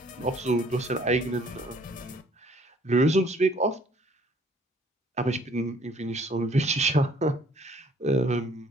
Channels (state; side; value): normal; both; correlation 0.59